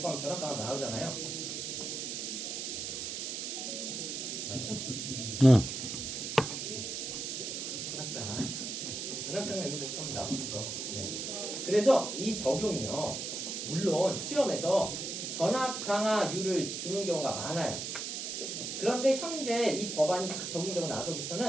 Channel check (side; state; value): right; noise; hiss, 4 dB below the sound